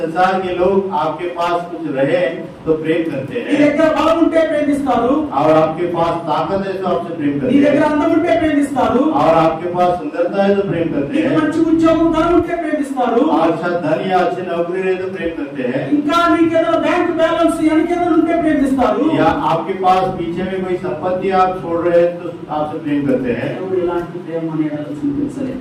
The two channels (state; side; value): identical; both; correlation 1.00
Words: के लोग आपके पास कुछ रहे तो प्रेम करते నీ हैं, దగ్గర బలం ఉంటే ప్రేమిస్తారు. और आपके पास ताकत है तो आपसे प्रेम నీ करते దగ్గర हैं, అందం ఉంటే ప్రేమిస్తారు. और आपके पास सुंदरता है तो प्रेम करते నీకు हैं, మంచి ఉద్యోగం ధనం ఉంటే ప్రేమిస్తారు. और अच्छा धन या अच्छी नौकरी रहे तो प्रेम करते हैं, ఇంకా నీకేదో బ్యాంక్ బ్యాలెన్స్ వెనకేదో ఉంటే ప్రేమిస్తారు. या आपके पास पीछे में कोई संपत्ति आप छोड़ रहे हैं तो आपसे प्रेम करते हैं। దేవుడు ఇలాంటి ప్రేమ మన ఎడల చూపించలేదు.